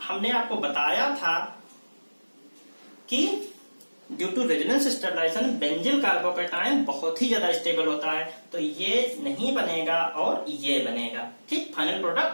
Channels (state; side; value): inverted; both; correlation -1.00